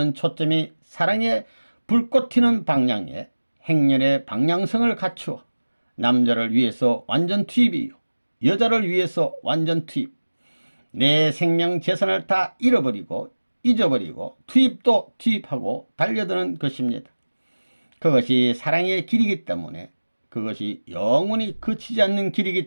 초점이 사랑의 불꽃 튀는 방향에 행렬의 방향성을 갖추어 남자를 위해서 완전 투입이요 여자를 위해서 완전 투입, 내 생명 재산을 다 잃어버리고 잊어버리고 투입도 투입하고 달려드는 것입니다. 그것이 사랑의 길이기 때문에, 그것이 영원히 그치지 않는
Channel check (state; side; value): inverted; both; correlation -1.00